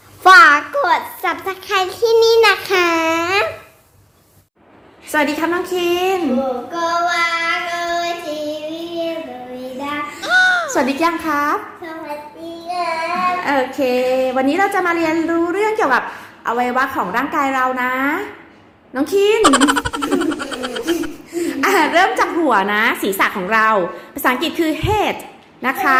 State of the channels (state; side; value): identical; both; correlation 1.00